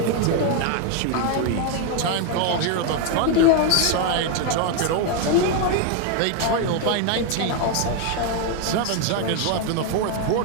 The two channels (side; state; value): both; different; correlation 0.01